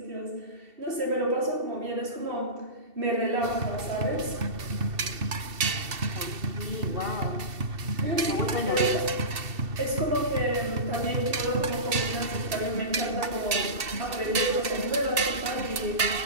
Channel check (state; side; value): late; left; 2.7 ms